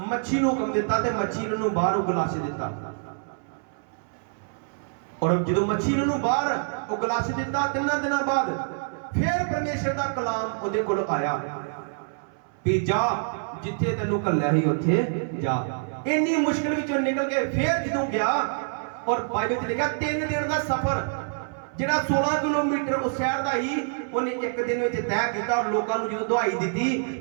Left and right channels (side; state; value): left; silent; 61 dB below the other